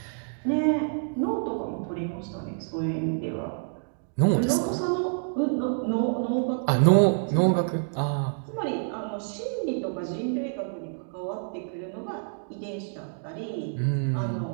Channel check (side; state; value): left; silent; digital silence